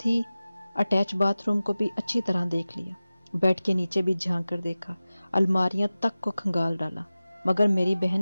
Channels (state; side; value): inverted; both; correlation -0.96